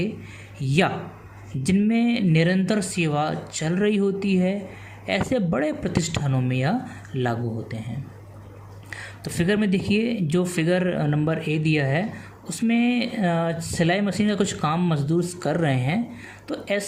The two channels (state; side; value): identical; both; correlation 1.00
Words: या जिनमें निरंतर सेवा चल रही होती है, ऐसे बड़े प्रतिष्ठानों में यह लागू होते हैं। तो फिगर में देखिए, जो फिगर नंबर ए दिया है उसमें सिलाई मशीन का कुछ काम मजदूर कर रहे हैं। तो